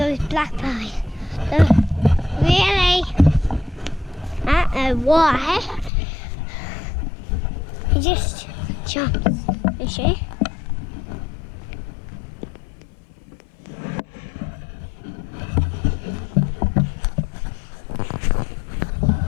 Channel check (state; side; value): drops out; right; at 5.9 s